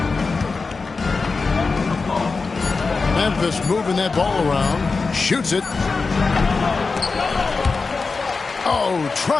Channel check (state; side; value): quieter; right; 4.3 dB